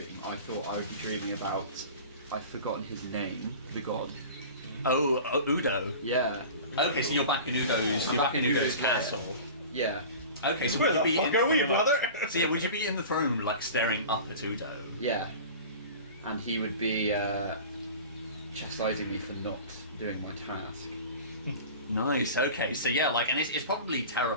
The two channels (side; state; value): both; inverted; correlation -0.37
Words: I thought I would be dreaming about. I've forgotten his name, the god. Oh, Udo. Yeah. Okay, so you're back in Udo's. I'm You're back back in in Udo's Udo's lair. castle. Yeah. Okay, so Where would you the be fuck are we, brother? So yeah, would you be in the throne room, like staring up at Udo? Yeah. And he would be chastising me for not doing my task. Nice. Okay. So yeah, like, and it's probably